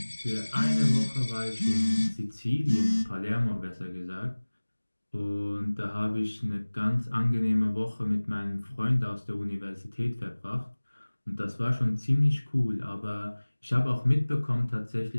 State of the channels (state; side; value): inverted; both; correlation -1.00